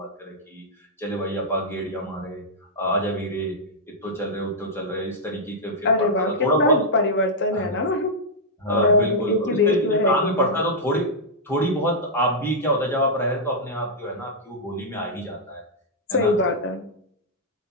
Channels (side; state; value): both; normal; correlation -0.07